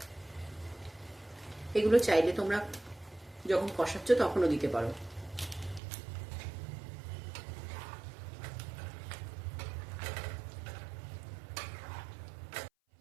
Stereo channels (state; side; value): drops out; left; at 5.8 s